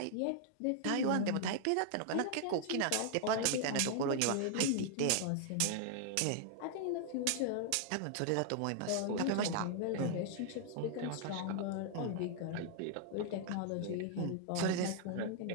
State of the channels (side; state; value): both; different; correlation -0.01